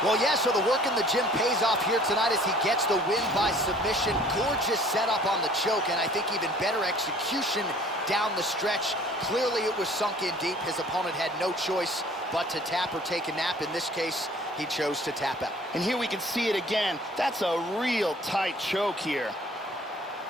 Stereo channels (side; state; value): both; normal; correlation 0.52